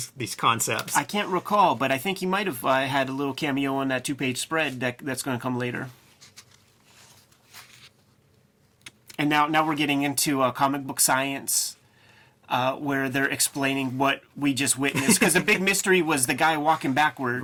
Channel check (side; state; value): both; identical; correlation 1.00